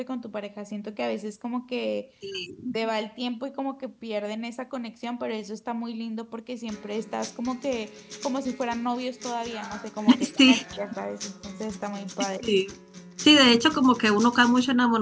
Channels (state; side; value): identical; both; correlation 1.00